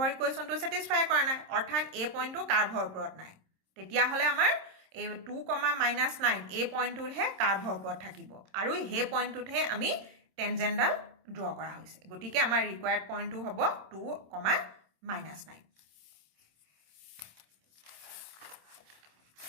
ইকুৱেশ্যনটো ছেটিছফাই কৰা নাই অৰ্থাৎ এই পইণ্টটো কাৰ্ভৰ ওপৰত নাই তেতিয়াহ'লে আমাৰ এই 2, -9 এই পইণ্টটোতহে কাৰ্ভৰ ওপৰত থাকিব আৰু সেই পইণ্টটোতহে আমি টেনজেণ্টডাল ড্ৰ কৰা হৈছে গতিকে আমাৰ ৰিকুৱাৰ্ড পইণ্টটো হ'ব 2, -9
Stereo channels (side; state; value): left; late; 26 ms